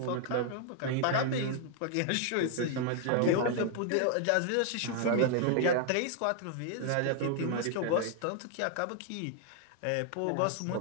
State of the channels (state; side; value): different; both; correlation 0.00